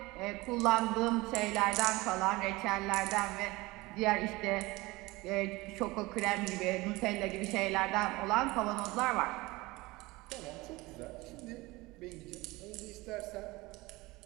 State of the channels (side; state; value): left; quieter; 21.6 dB